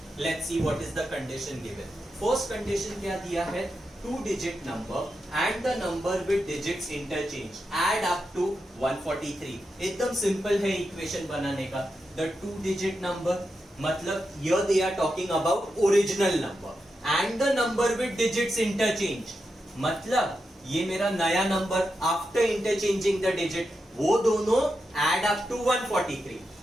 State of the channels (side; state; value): both; normal; correlation 0.87